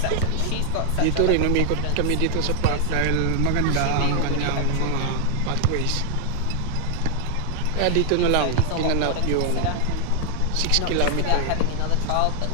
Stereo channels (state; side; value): different; both; correlation 0.00